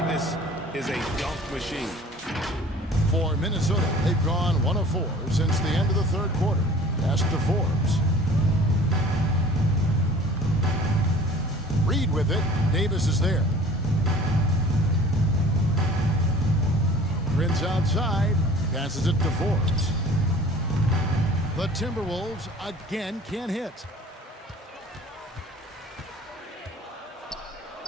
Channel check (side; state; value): both; normal; correlation 0.47